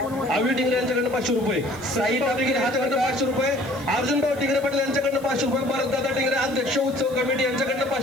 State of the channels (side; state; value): left; noise; hiss, 22 dB below the sound